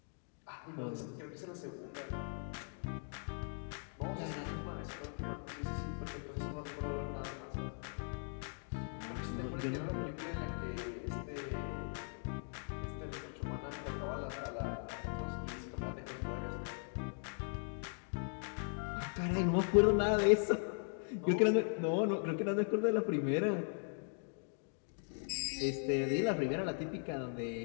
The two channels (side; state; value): right; silent; 52 dB below the other